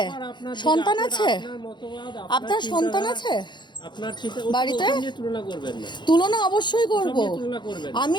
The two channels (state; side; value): late; right; 0.22 ms